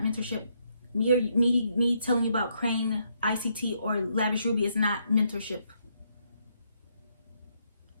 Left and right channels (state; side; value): inverted; both; correlation -0.75